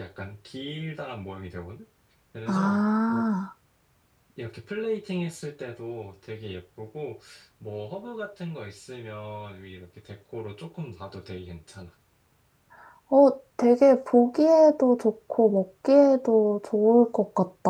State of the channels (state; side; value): identical; both; correlation 1.00